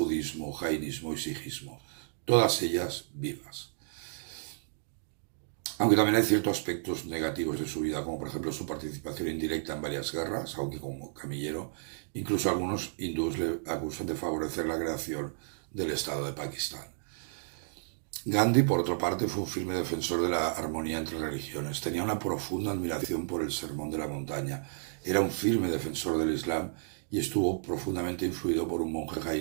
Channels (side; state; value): left; silent; digital silence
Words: jainismo y sijismo, todas ellas vivas. Aunque también hay ciertos aspectos negativos de su vida, como por ejemplo su participación indirecta en varias guerras, aunque como camillero, incluso algunos hindúes le acusan de favorecer la creación del Estado de Pakistán. Gandhi, por otra parte, fue un firme defensor de la armonía entre religiones. Tenía una profunda admiración por el Sermón de la Montaña. Era un firme defensor del Islam y estuvo profundamente influido por un monje